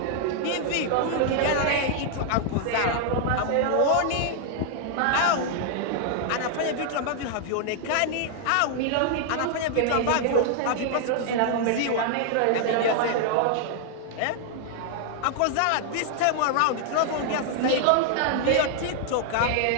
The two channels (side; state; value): both; different; correlation 0.00